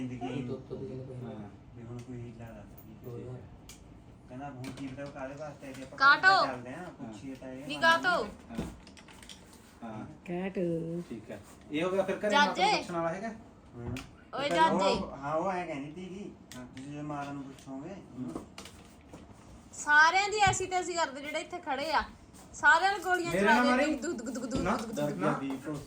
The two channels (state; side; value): identical; both; correlation 1.00